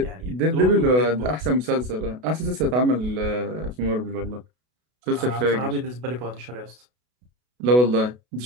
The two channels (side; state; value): left; late; 32 ms